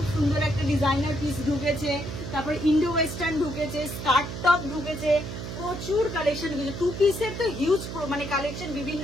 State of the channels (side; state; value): right; noise; hum, 7 dB below the sound